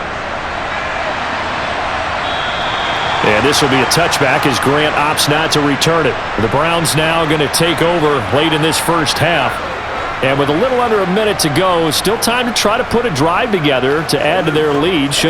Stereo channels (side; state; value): both; identical; correlation 1.00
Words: And this will be a touchback as Grant opts not to return it. The Browns now going to take over late in this first half. And with a little under a minute to go, still time to try to put a drive together to add to their lead